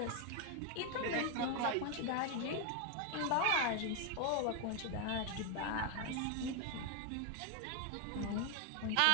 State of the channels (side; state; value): both; different; correlation 0.01